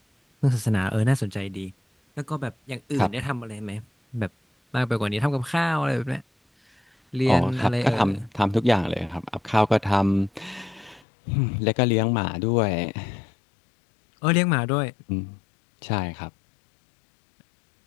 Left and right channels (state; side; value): drops out; right; at 11.1 s